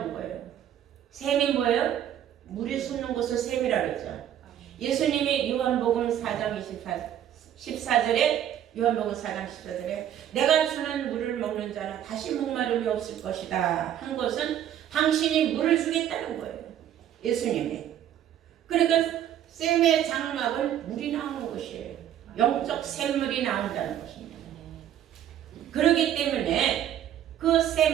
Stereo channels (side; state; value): left; quieter; 10.7 dB